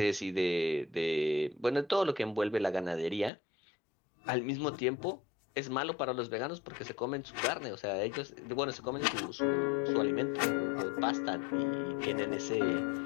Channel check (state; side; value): drops out; right; at 3.3 s